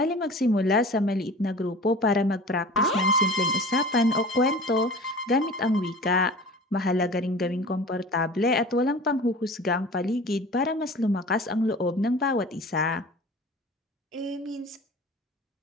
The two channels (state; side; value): normal; both; correlation 0.39